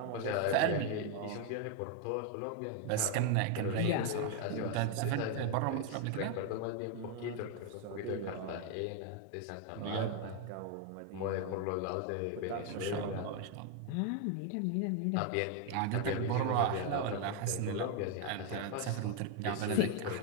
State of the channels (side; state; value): both; different; correlation 0.01